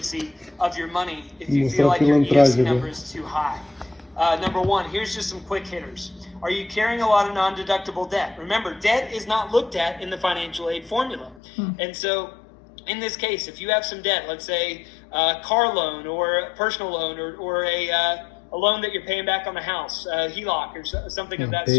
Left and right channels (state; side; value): drops out; right; at 11.4 s